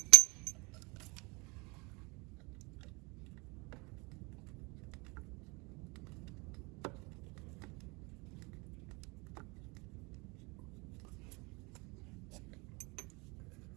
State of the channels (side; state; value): left; quieter; 27.7 dB